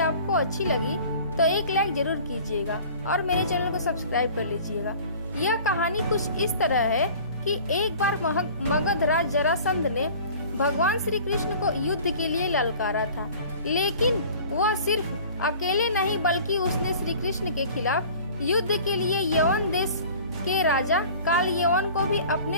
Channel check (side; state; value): both; inverted; correlation -0.45